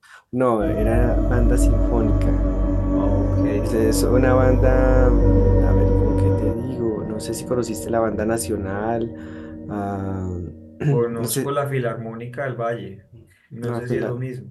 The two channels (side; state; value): both; identical; correlation 1.00